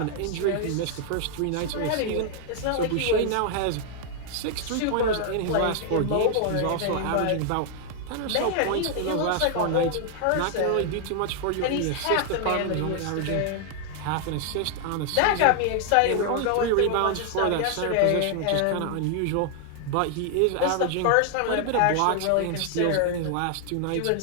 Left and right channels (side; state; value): both; different; correlation 0.00